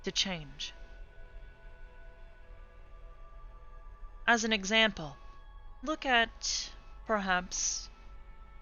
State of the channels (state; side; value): identical; both; correlation 1.00